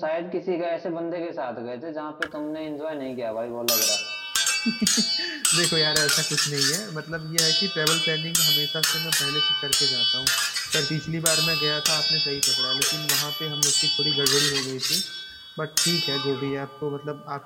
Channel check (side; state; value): both; identical; correlation 1.00